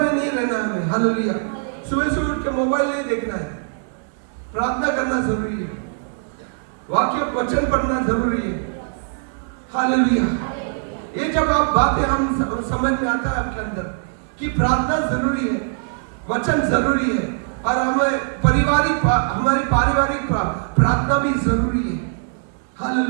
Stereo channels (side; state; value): left; silent; digital silence